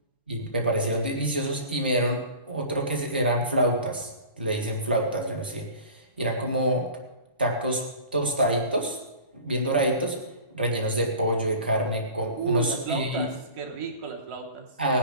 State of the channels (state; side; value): inverted; both; correlation -0.41